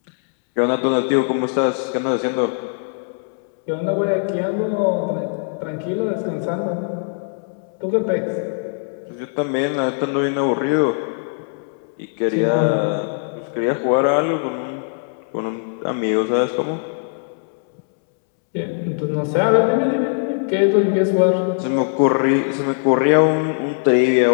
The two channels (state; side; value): silent; right; 65 dB below the other